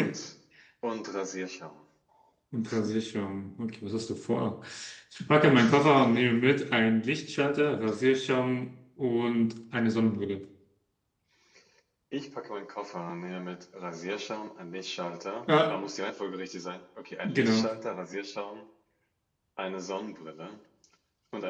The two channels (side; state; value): both; identical; correlation 1.00